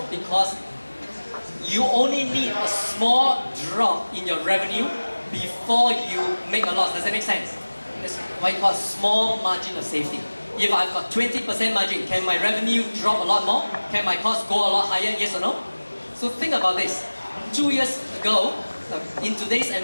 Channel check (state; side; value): inverted; both; correlation -1.00